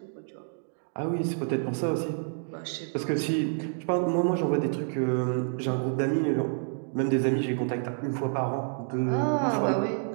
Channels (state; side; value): silent; left; digital silence